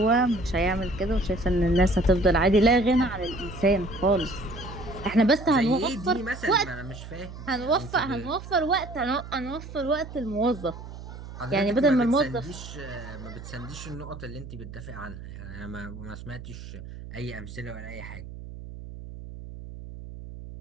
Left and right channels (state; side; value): noise; right; hum, 12 dB below the sound